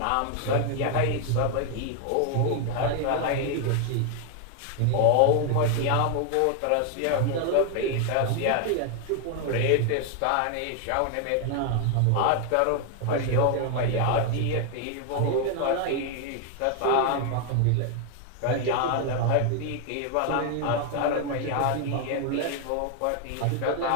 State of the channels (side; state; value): both; different; correlation 0.00